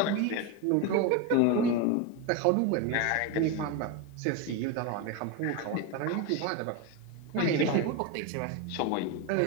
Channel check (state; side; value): different; both; correlation 0.03